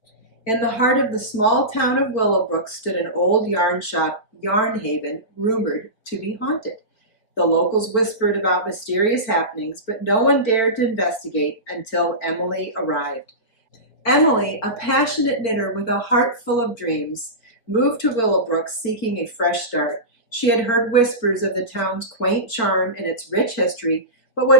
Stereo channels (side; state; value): right; late; 4.4 ms